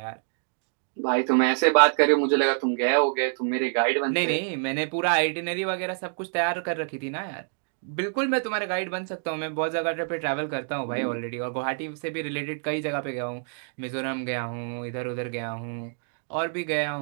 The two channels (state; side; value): silent; left; digital silence